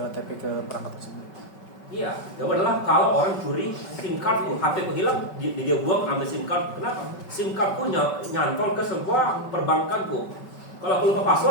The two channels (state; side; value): late; right; 5.3 ms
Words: OTP ke perangkat tersebut. Iya, jawaban adalah kalau orang curi SIM cardku, HP ku hilang, dia buang ambil SIM card. Kenapa? SIM cardku nyantol ke sebuah perbankanku. Kalau aku lupa